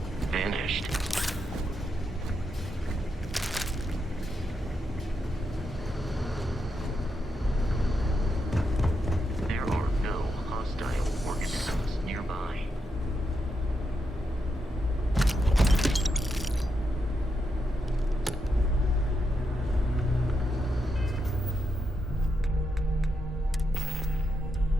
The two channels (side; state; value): both; normal; correlation 0.83